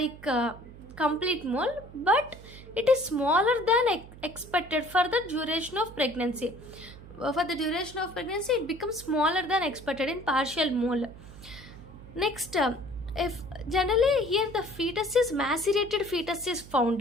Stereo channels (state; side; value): noise; right; hum, 17 dB below the sound